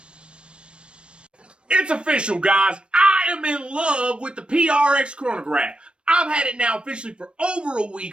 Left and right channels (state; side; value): late; left; 0.057 ms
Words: it's official, guys. I am in love with the PRX chronograph. I've had it now officially for over a